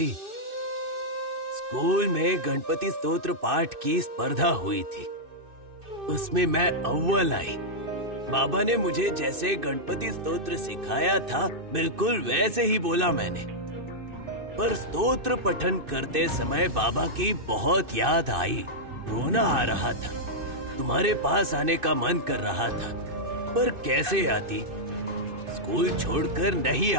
स्कूल में गणपति स्तोत्र पाठ की स्पर्धा हुई थी, उसमें मैं अव्वल आई। बाबा ने मुझे जैसे गणपति स्तोत्र सिखाया था, बिल्कुल वैसे ही बोला मैंने। पर स्तोत्र पठन करते समय बाबा की बहुत याद आई, रोना आ रहा था। तुम्हारे पास आने का मन कर रहा था, पर कैसे आती? स्कूल छोड़कर नहीं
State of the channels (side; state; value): left; late; 2.6 ms